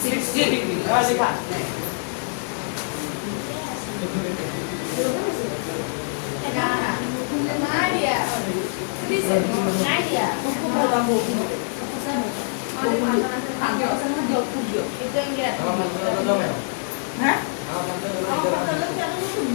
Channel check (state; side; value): silent; right; digital silence